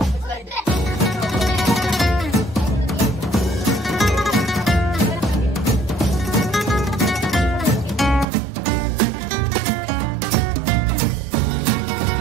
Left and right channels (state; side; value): drops out; left; at 8.2 s